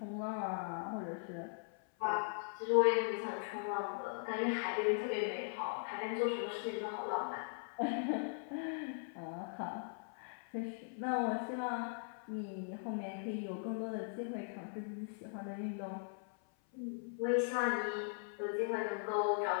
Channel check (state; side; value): silent; right; 51 dB below the other